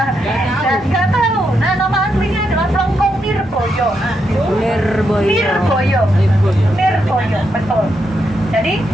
Dan nggak tahu. Nah, nama aslinya adalah Plengkung Nirboyo. Nirboyo, betul. Jadi,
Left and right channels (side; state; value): both; normal; correlation 0.81